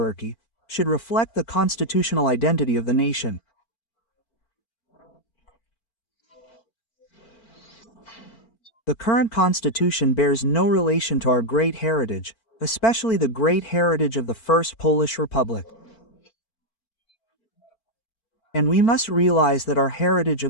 should reflect the constitutional identity of the nation. The current constitution bears no relation to our great heritage, especially the great heritage of the First Polish Republic. And we must realize that our heritage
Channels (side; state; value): right; late; 4.4 ms